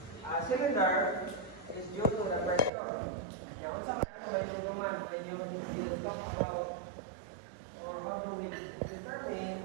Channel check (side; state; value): left; drops out; at 2.7 s